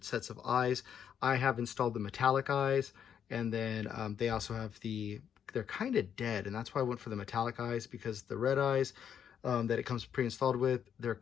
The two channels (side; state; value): right; quieter; 8.5 dB